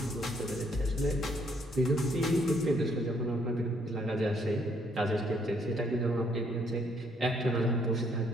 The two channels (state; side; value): normal; both; correlation 0.68